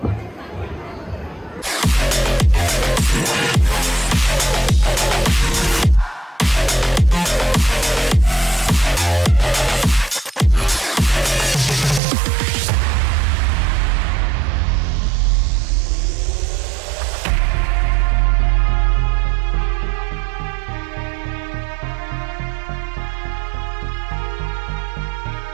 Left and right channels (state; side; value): drops out; left; at 12.0 s